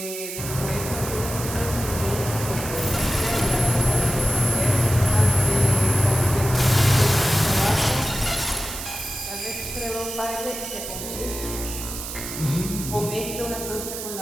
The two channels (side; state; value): right; noise; hiss, 8 dB below the sound